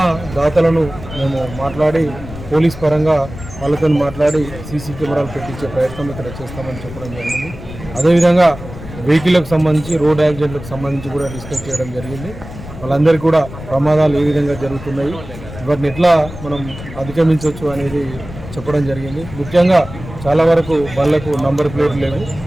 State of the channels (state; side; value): noise; left; rumble, 13 dB below the sound